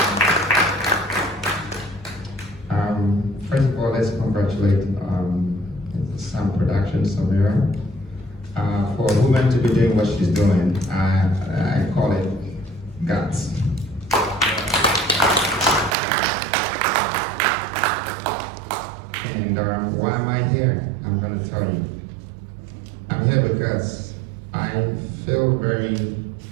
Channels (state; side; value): drops out; left; at 16.0 s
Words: First of all, let's congratulate Sam Productions, Samira, for a woman to be doing what she's doing. I call it guts. And why am I here? I'm going to tell you. I'm here because I feel very